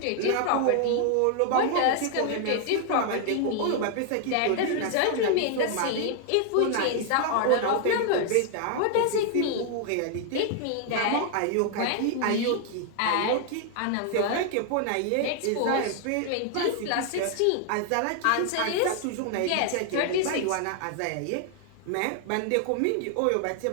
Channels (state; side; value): different; both; correlation 0.00